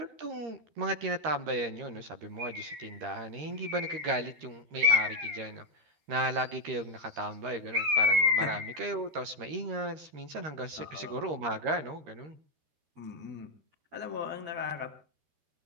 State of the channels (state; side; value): late; left; 13 ms